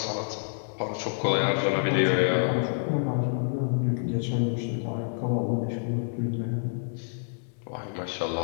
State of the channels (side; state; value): right; silent; digital silence